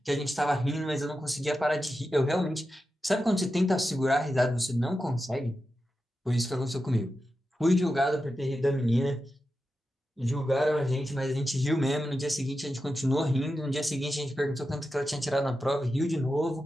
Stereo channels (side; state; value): both; normal; correlation 0.90